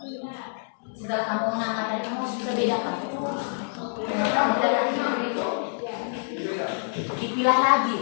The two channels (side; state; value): right; silent; digital silence